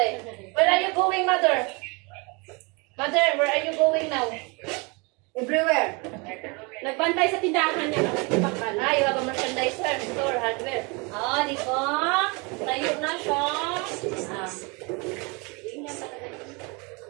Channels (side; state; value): left; quieter; 29.5 dB